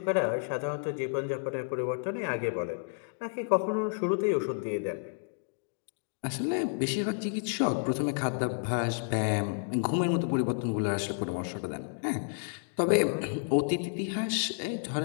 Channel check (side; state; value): right; silent; digital silence